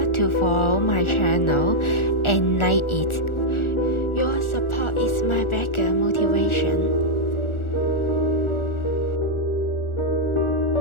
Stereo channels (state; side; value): late; right; 1.4 ms